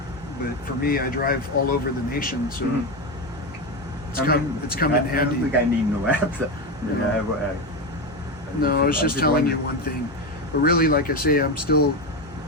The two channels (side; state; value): both; normal; correlation 0.15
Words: but for me, I drive all over the nation, so Mhm. it's come in I handy. don't think I need no apps. Yeah. I have, No, I was just telling you one thing, but really, like I say, I'm still